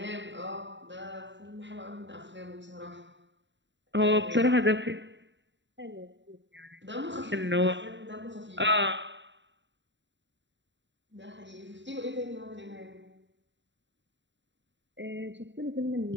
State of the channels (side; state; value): left; late; 0.53 ms